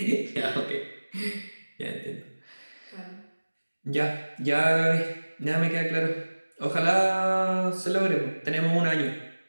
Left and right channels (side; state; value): both; inverted; correlation -1.00